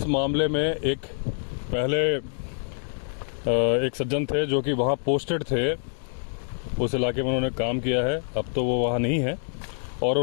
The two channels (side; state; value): right; silent; digital silence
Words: मामले में एक पहले एक सज्जन थे जो कि वहाँ पोस्टेड थे, उस इलाके में उन्होंने काम किया है। अब तो वो वहाँ नहीं है, और